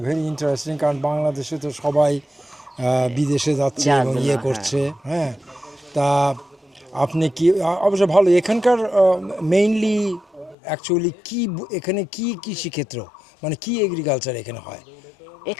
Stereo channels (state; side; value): drops out; right; at 10.6 s